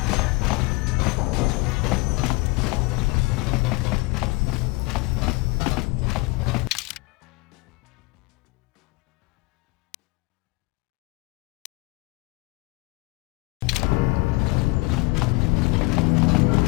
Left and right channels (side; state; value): right; quieter; 24.7 dB